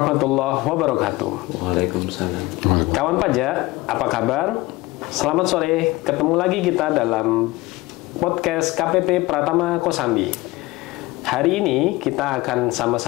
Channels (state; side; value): quieter; right; 20.3 dB